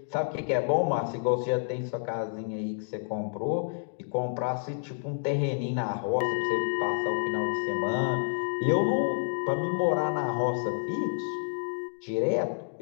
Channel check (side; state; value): right; silent; digital silence